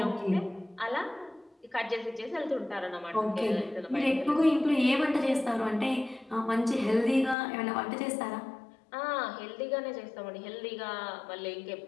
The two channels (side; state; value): right; drops out; at 7.4 s